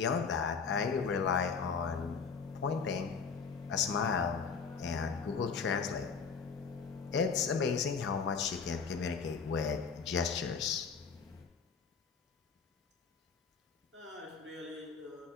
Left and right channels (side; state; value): right; quieter; 5.6 dB